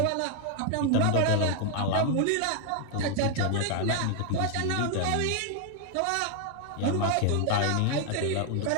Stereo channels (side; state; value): both; different; correlation 0.00